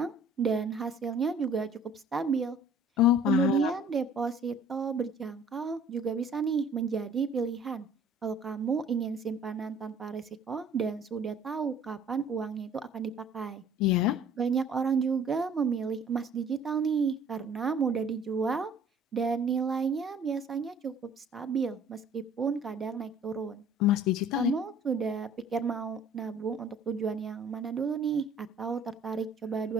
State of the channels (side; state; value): both; normal; correlation 0.52